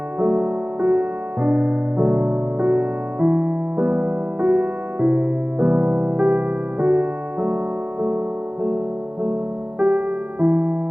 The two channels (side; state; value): left; late; 0.074 ms